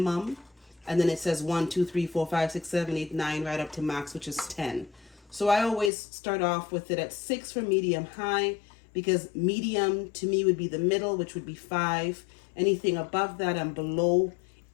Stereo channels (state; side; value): drops out; right; at 5.9 s